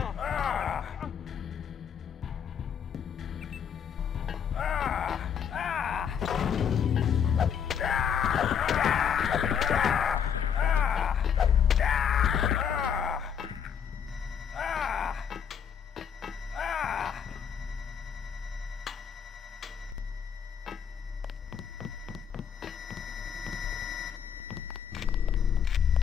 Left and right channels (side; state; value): right; quieter; 7.8 dB